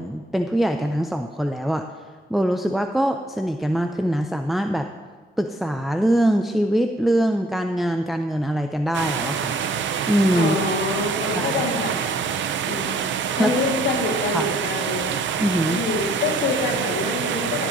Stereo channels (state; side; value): normal; both; correlation 0.63